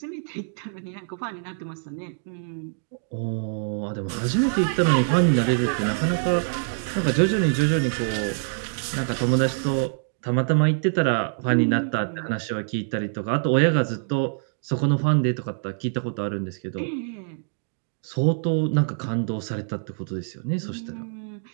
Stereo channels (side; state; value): left; silent; digital silence